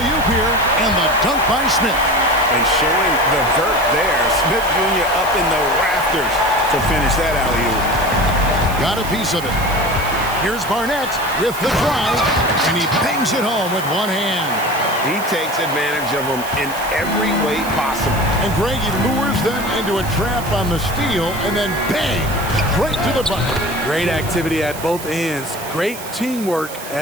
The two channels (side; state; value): right; noise; hiss, 13 dB below the sound